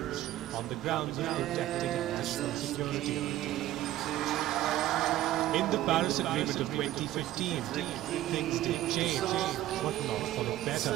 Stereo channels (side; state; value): left; quieter; 14.4 dB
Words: on the grounds of protecting national security. In the Paris Agreement of 2015, things did change, but not for the better.